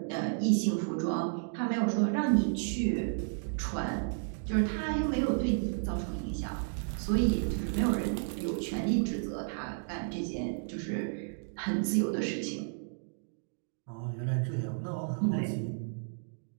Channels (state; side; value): silent; left; digital silence